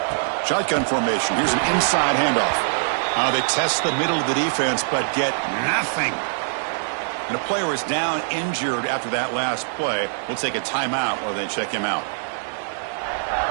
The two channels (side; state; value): left; silent; digital silence